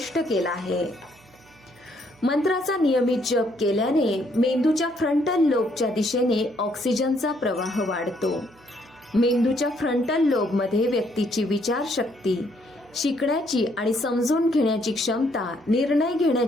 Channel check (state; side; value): noise; right; hum, 29 dB below the sound